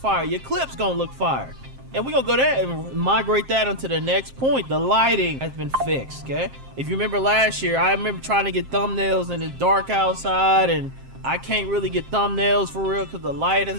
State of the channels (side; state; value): left; late; 7.6 ms